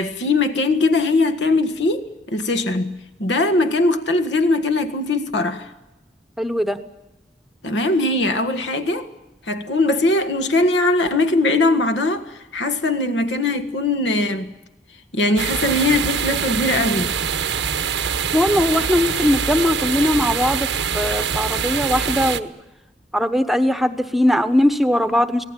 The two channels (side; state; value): both; normal; correlation 0.57